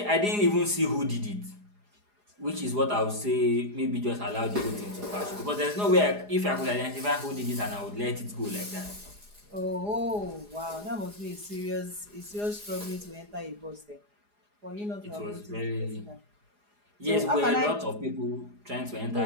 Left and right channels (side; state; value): left; late; 4.8 ms